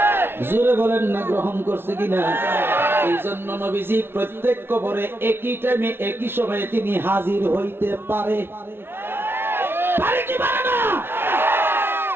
জোরে বলেন না, গ্রহণ করছে কিনা? এই জন্য নবীজি প্রত্যেক কবরে একই টাইমে একই সময়ে তিনি হাজির হইতে পারে, পারে কি পারে না?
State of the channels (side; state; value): left; late; 0.11 ms